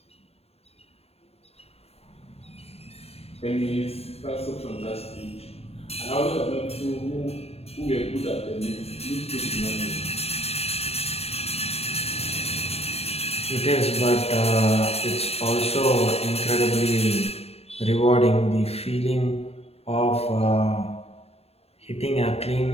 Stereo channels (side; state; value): right; late; 0.29 ms